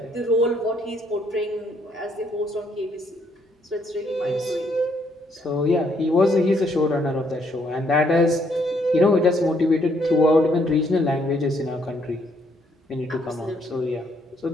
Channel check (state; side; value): normal; both; correlation 0.70